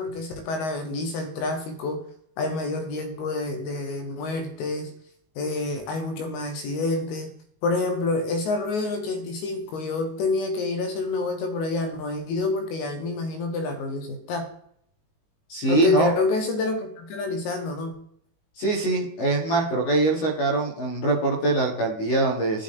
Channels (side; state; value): right; late; 19 ms